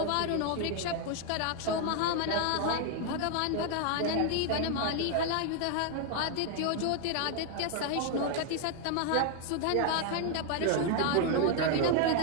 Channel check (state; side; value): different; both; correlation 0.00